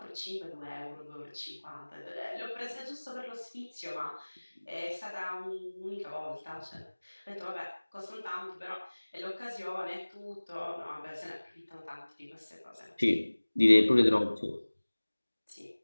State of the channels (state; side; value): inverted; both; correlation -1.00